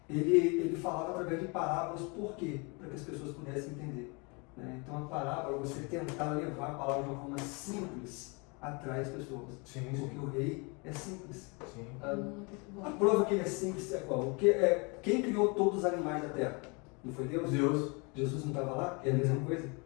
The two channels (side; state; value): right; quieter; 30.7 dB